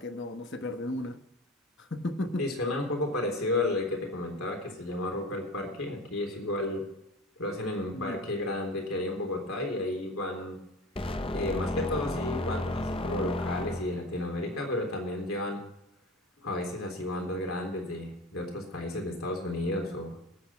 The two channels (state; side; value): normal; both; correlation 0.33